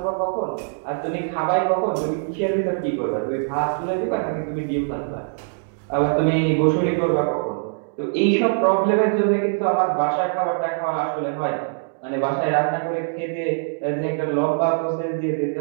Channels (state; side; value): silent; left; digital silence